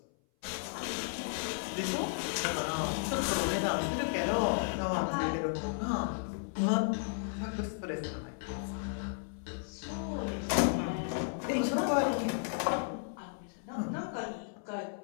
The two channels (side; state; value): right; silent; 55 dB below the other